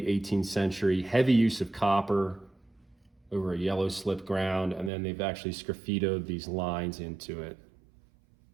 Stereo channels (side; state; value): left; drops out; at 4.9 s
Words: 18th century, heavy use of copper over a yellow slip ground, and then they've actually sgraffitoed these lines into it.